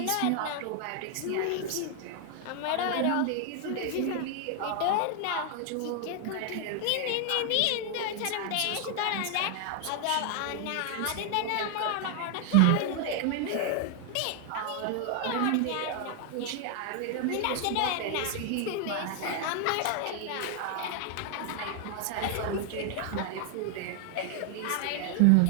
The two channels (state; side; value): different; both; correlation 0.00